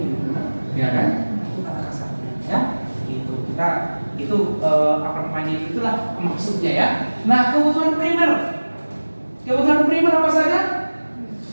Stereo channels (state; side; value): inverted; both; correlation -1.00